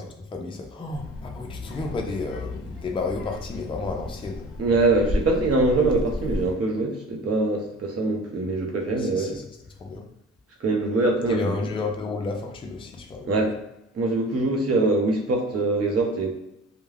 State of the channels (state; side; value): normal; both; correlation 0.41